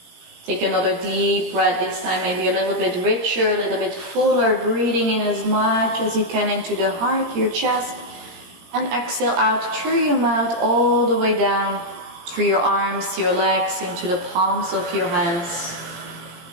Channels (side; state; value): left; late; 17 ms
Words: Take another deep breath, this time maybe a little bit richer, a little bit fuller, breathing in as much as you can into the heart, your chest. And exhale out through your mouth all the way down, through your arms, your legs, into the palms of your hands,